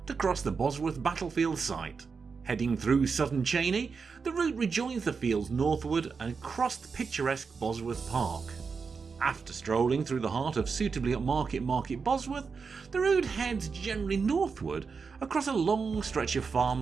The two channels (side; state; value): left; quieter; 5.2 dB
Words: to cross the Bosworth Battlefield site. Heading through Sutton Cheney, the route rejoins the fields northward and across the picturesque Bosworth Park. After strolling through the heart of suitably upmarket Market Bosworth, the route heads generally northward across a long stretch of